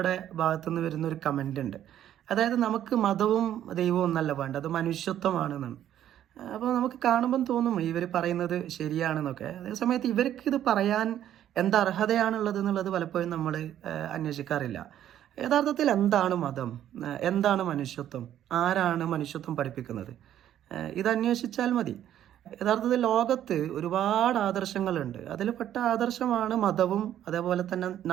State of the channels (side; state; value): left; quieter; 11.2 dB